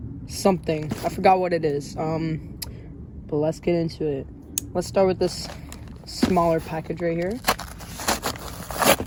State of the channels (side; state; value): both; identical; correlation 1.00